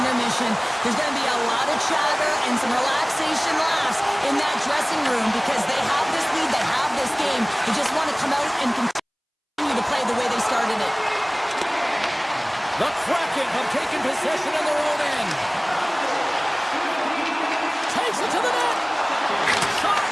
intermission, there's going to be a lot of chatter and some relaxation laughs in that dressing room because they have this lead, they have this game. They just want to come out and continue to play the way they started it. The Kraken have taken possession in their own end. Takes it to the net. Shot.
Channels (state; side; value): identical; both; correlation 1.00